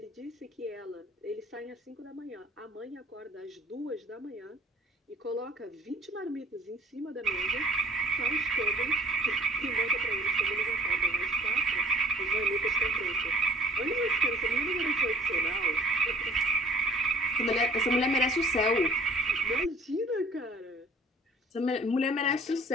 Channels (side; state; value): both; normal; correlation 0.53